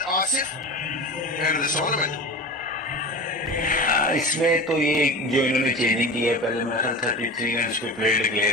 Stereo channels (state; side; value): normal; both; correlation 0.31